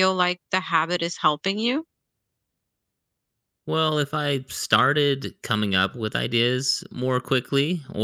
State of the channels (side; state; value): both; identical; correlation 1.00